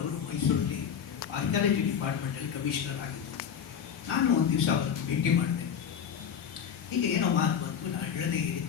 ಅವರು ಮೈಸೂರಲ್ಲಿ ಆರ್ಕಿಯಾಲಜಿ ಡಿಪಾರ್ಟ್ಮೆಂಟಲ್ಲಿ ಕಮಿಷನರ್ ಆಗಿದ್ದೆ. ನಾನು ಒಂದು ದಿವಸ ಅವರನ್ನು ಭೇಟಿ ಮಾಡಿದೆ. ಹೀಗೆ ಏನೋ ಮಾತು ಬಂತು, ನಾನು ಹೇಳದೆ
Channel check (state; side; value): quieter; right; 7.9 dB